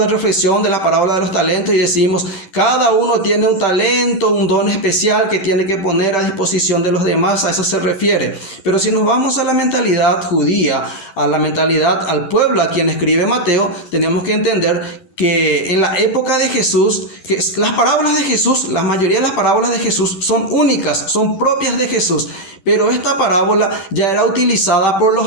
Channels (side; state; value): right; late; 10 ms